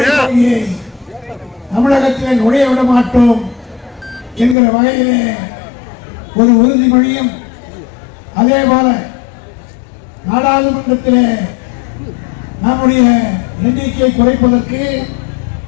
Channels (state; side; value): drops out; right; at 4.5 s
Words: கொள்கையை தமிழகத்திலே நுழைய விட மாட்டோம் என்கிற வகையிலே ஒரு உறுதிமொழியும், அதே போல நாடாளுமன்றத்திலே நம்முடைய எண்ணிக்கை குறைப்பதற்கு